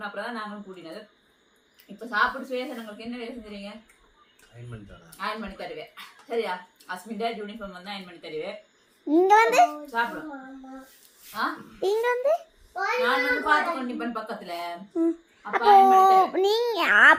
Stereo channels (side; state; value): both; identical; correlation 1.00